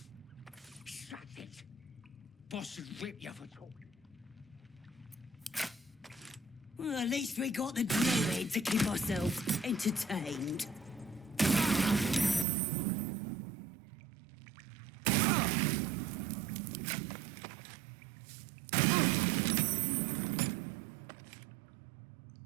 Shut it! Boss will rip you for talking. Well, at least we got the druid to keep ourselves entertained.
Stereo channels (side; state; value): left; drops out; at 12.5 s